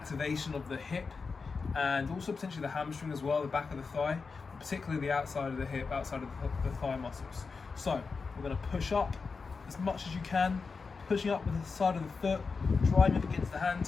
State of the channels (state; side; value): quieter; right; 4.8 dB